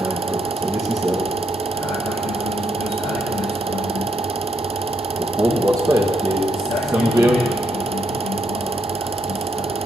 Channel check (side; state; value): both; normal; correlation 0.77